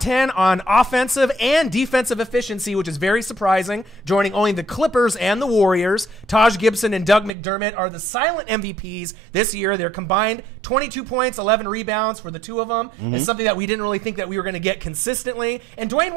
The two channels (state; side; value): drops out; left; at 7.3 s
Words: on offensive and defensive efficiency, which is very surprising, joining only the Clippers and the Warriors. Taj Gibson and Doug McDermott are the silent MVPs this year. They're combined 22 points, 11 rebounds for the two of them. It's something that we didn't really think that we were going to get consistently. And Dwayne